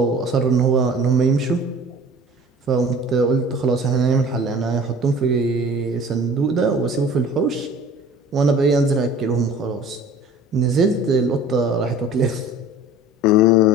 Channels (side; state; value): both; normal; correlation 0.44